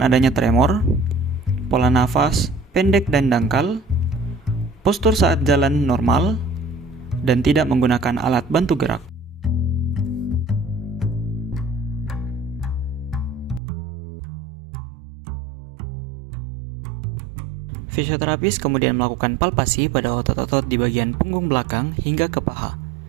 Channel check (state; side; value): drops out; left; at 13.6 s